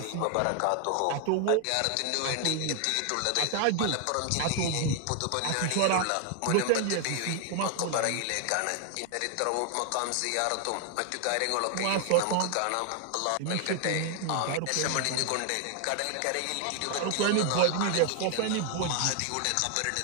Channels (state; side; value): different; both; correlation 0.00